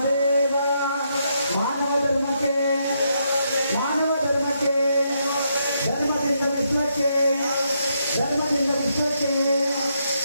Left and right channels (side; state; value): both; inverted; correlation -0.78